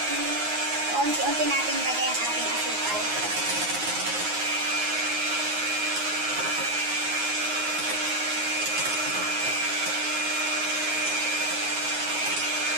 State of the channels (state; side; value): late; left; 9.5 ms